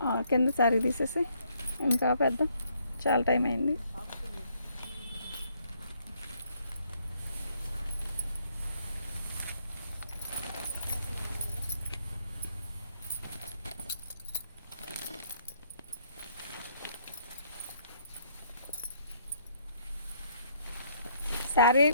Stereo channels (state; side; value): inverted; both; correlation -0.68